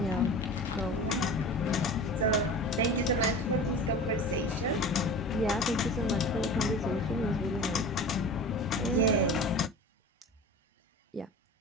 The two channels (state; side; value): normal; both; correlation 0.36